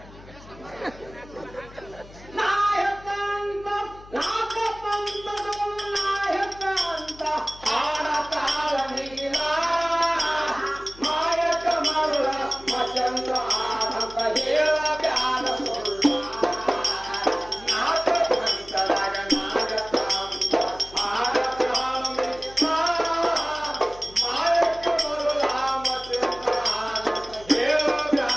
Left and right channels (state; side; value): noise; left; hum, 20 dB below the sound